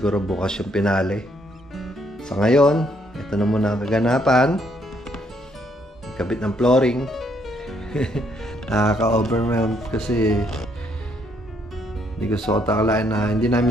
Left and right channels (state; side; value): normal; both; correlation 0.70